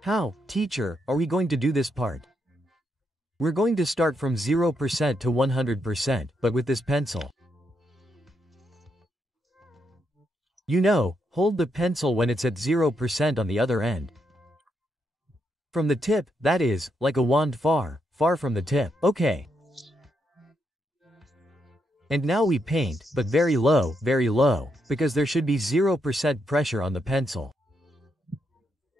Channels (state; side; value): normal; both; correlation 0.80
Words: How, teacher, are we going to do this part? We're going to start from 0% to 100%, but with this pencil. You know, hold the pencil when it's at 0% on the other end. From the tip, that is, like a wand far from the tip. Okay. And now we paint, but very low, because there should be 0% pressure on the pencil.